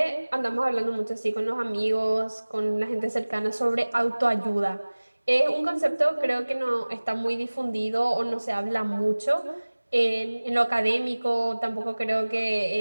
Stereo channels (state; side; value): inverted; both; correlation -1.00